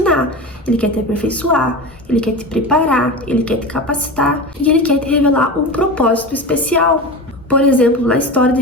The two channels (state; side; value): normal; both; correlation 0.27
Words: Ele quer te aperfeiçoar, Ele quer te preparar, Ele quer te capacitar e Ele quer te revelar um propósito especial. Por exemplo, na história